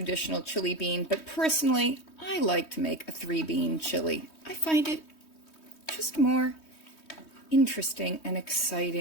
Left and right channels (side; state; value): right; late; 3.2 ms